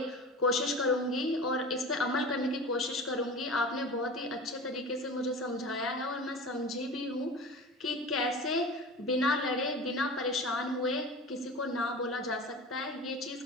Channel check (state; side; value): normal; both; correlation 0.34